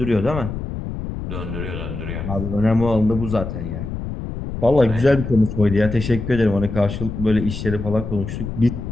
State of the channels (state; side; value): noise; left; rumble, 6 dB below the sound